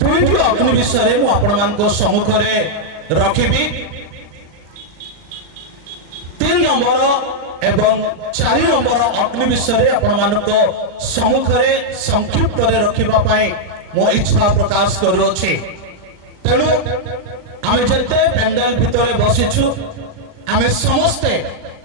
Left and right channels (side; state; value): left; late; 39 ms